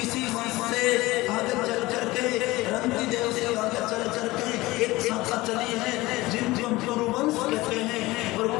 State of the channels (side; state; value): right; quieter; 19.9 dB